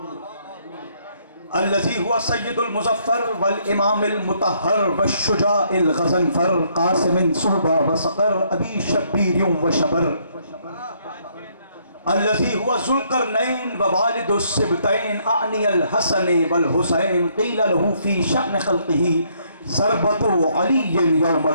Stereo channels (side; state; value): both; inverted; correlation -0.69